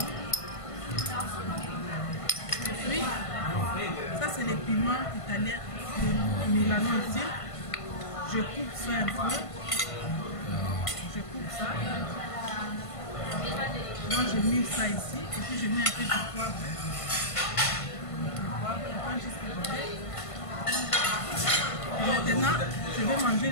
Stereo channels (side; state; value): right; late; 1.5 ms